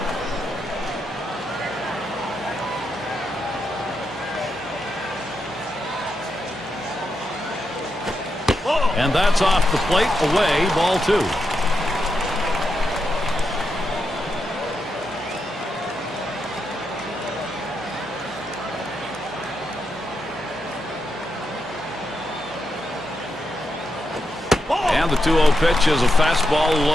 And that's off the plate, away, ball 2. And the 2-0 pitch is a fastball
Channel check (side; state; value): both; normal; correlation 0.84